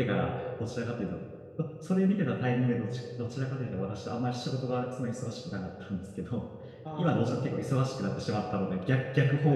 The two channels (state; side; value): identical; both; correlation 1.00